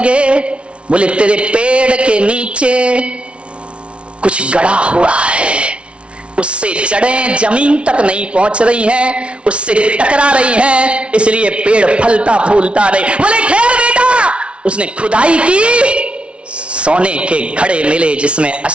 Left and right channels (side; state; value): left; late; 0.060 ms